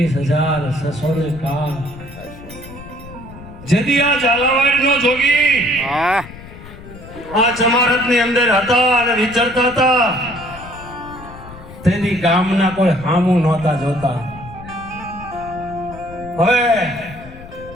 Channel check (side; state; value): left; noise; rumble, 16 dB below the sound